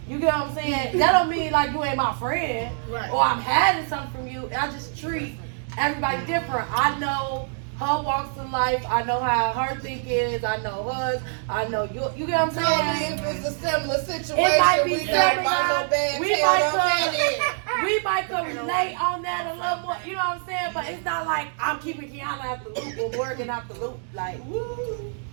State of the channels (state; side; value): silent; left; digital silence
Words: You get what I'm saying? That don't mean like you ain't my friend, Right. or I'm hiding something from you. I just treat everybody different. I know her walks in life. I know how her think is. I know hers. I know you. You get what I'm saying? If it's a similar situation, It might be we got my similar. little bad We tail might up in come. it. We might come relate on that a little more. You know what I'm saying? But it's not like I'm keeping Kiana out the loop or Morgan out the loop. Like,